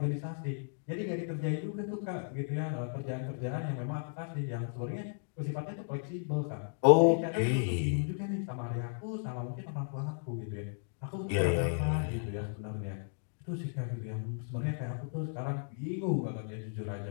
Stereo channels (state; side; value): silent; right; digital silence